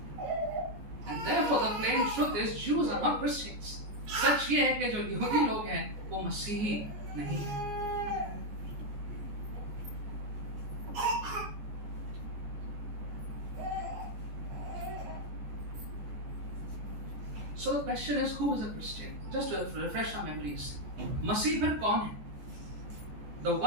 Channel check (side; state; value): left; late; 14 ms